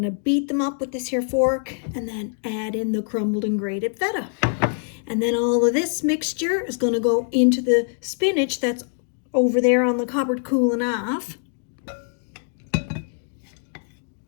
beat them up with this here fork and then add in the crumbled and grated feta. And then all of this mixture is gonna go into the spinach that's over there on the cupboard cooling off.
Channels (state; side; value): silent; right; 62 dB below the other